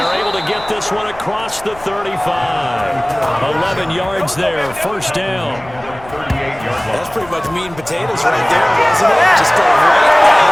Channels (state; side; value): noise; left; rumble, 21 dB below the sound